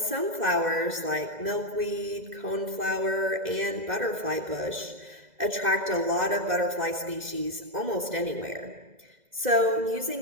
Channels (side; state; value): left; late; 2.0 ms